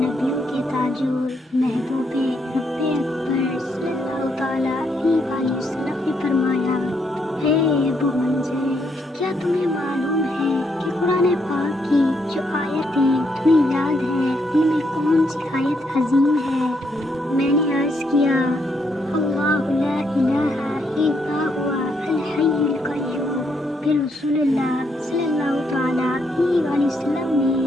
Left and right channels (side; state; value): both; normal; correlation 0.76